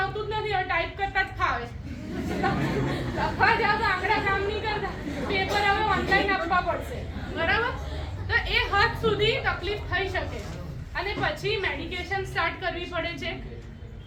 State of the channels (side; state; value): both; identical; correlation 1.00